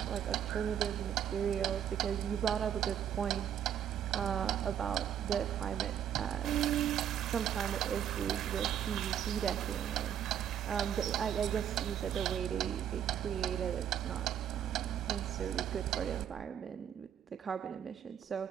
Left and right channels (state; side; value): quieter; left; 9.6 dB